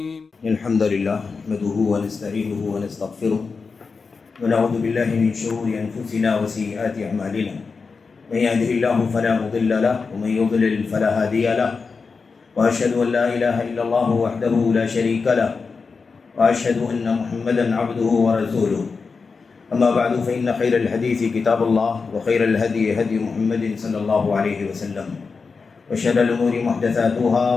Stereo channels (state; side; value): quieter; right; 4.8 dB